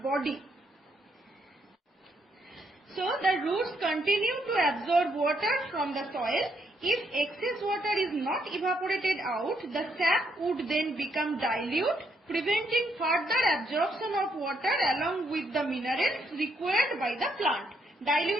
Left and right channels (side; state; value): both; normal; correlation 0.75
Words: body. So, the roots continue to absorb water from the soil. If excess water is not evaporated out, the sap would then become dilute, preventing further absorption of water along with the minerals required by the plant.